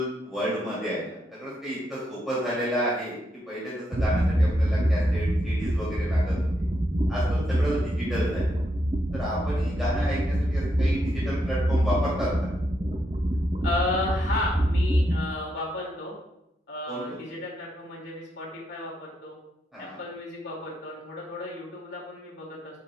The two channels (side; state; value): both; normal; correlation 0.80